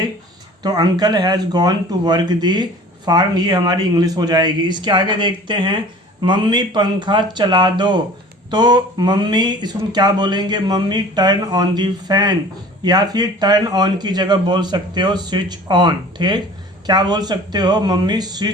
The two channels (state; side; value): normal; both; correlation 0.44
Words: तो uncle has gone to work the farm, ये हमारी इंग्लिश हो जाएगी। इसके आगे देखते हैं मम्मी पंखा चला दो। तो मम्मी इसको क्या बोलेंगे, mummy turn on the fan, या फिर टर्न ऑन की जगह बोल सकते हो स्विच ऑन। ठीक, क्या बोल सकते हो, मम्मी